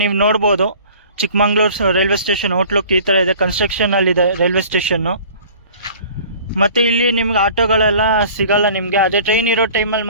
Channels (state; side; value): inverted; both; correlation -0.47